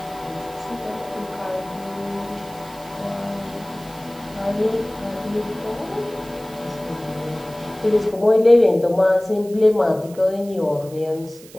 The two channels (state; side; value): noise; right; hiss, 21 dB below the sound